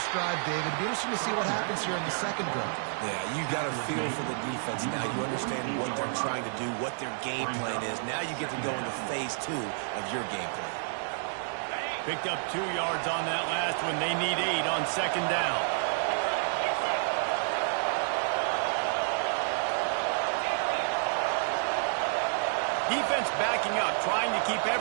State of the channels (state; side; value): silent; left; digital silence